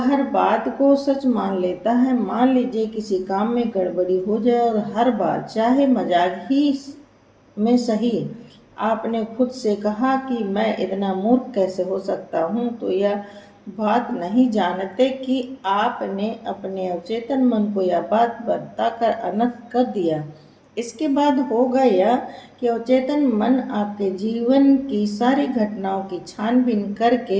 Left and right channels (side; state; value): both; identical; correlation 1.00